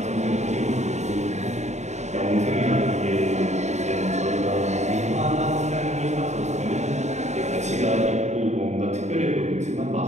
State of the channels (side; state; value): left; late; 0.33 ms